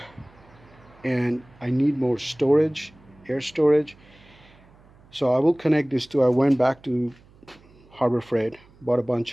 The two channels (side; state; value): right; noise; hum, 27 dB below the sound